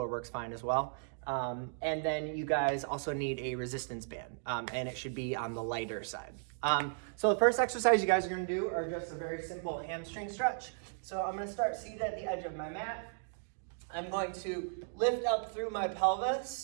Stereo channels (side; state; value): left; silent; digital silence